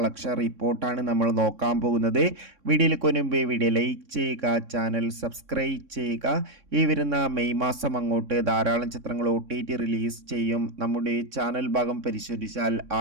റിപ്പോർട്ടാണ് നമ്മൾ നോക്കാൻ പോകുന്നത്. വീഡിയോയിലേക്ക് മുൻപ് വീഡിയോ ലൈക്ക് ചെയ്യുക, ചാനൽ സബ്സ്ക്രൈബ് ചെയ്യുക. ഈ വരുന്ന മെയ് മാസം അങ്ങോട്ട് ധാരാളം ചിത്രങ്ങൾ OTT റിലീസ് ചെയ്യും. നമ്മുടെ ചാനൽ ഭാഗം പരിശോധിച്ചാൽ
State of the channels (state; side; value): late; left; 3.6 ms